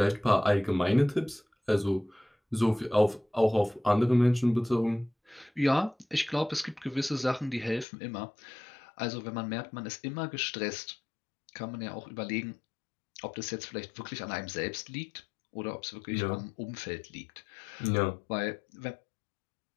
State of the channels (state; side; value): drops out; right; at 7.9 s